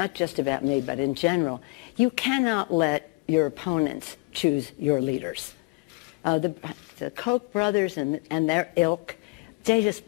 just about me, but in general, you cannot let your opponents choose your leaders. The Koch brothers and their ilk, they just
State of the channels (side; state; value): right; quieter; 28.0 dB